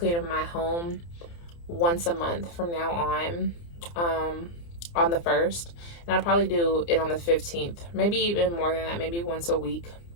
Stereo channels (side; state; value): right; late; 29 ms